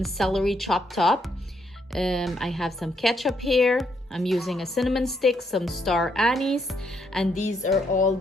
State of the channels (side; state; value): both; normal; correlation 0.75